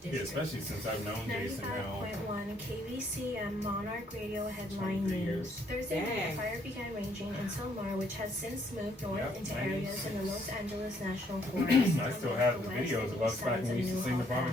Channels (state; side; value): normal; both; correlation 0.68